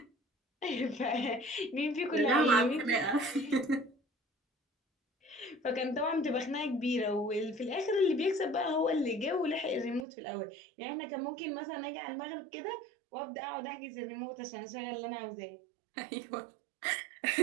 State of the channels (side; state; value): left; drops out; at 10.1 s